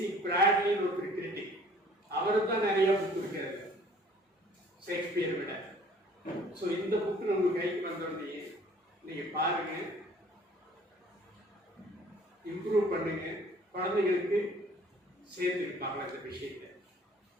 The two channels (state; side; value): normal; both; correlation 0.54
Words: பிராட்லின்னு ஒரு கிரிட்டிக், அவருக்கு தான் நிறைய புக் இருக்கிறது ஷேக்ஸ்பியரை விட. ஸோ இந்த புக்கு நம்ம கைக்கு வந்தோடனே நீங்கள் பாருங்க, இம்ப்ரூவ் பண்ணுங்க, குழந்தைகளுக்கு சேர்த்துருப்பாங்களா இந்த விஷயத்தை.